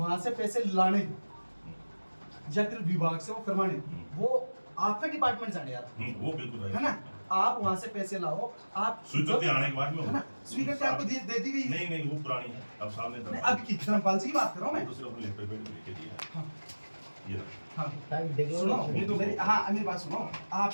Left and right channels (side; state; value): both; inverted; correlation -1.00